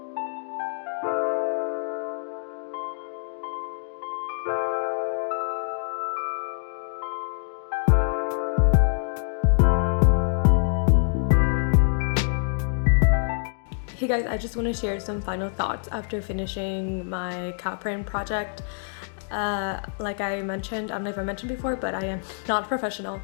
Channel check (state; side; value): silent; right; digital silence